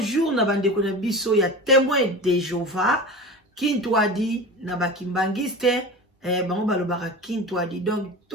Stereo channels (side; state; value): both; normal; correlation 0.31